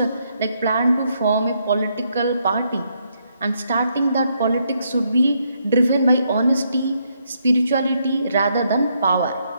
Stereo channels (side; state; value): both; inverted; correlation -0.76